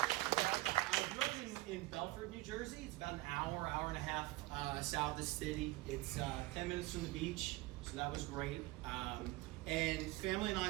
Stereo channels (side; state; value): left; quieter; 19.1 dB